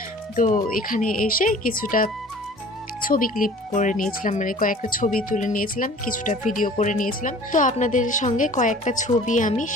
তো এখানে এসে কিছুটা ছবি ক্লিপ করে নিয়েছিলাম, মানে কয়েকটা ছবি তুলে নিয়েছিলাম, কিছুটা ভিডিও করে নিয়েছিলাম। তো আপনাদের সঙ্গে কয়েকটা ছবি আমি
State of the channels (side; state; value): both; normal; correlation 0.47